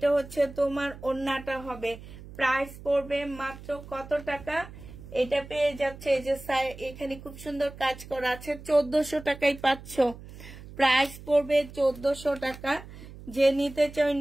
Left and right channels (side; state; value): right; noise; hum, 16 dB below the sound